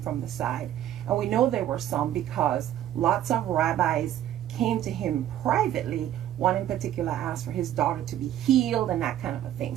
the side. And we know there were some because lots of rabbis came to him privately. One in particular asked for his daughter to be healed and that kind of a thing.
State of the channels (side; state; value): left; quieter; 11.9 dB